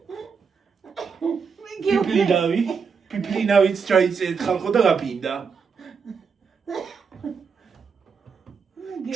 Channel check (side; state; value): left; quieter; 5.7 dB